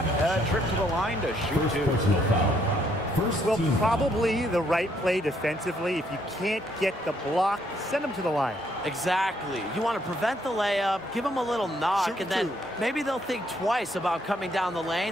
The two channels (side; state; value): both; normal; correlation 0.70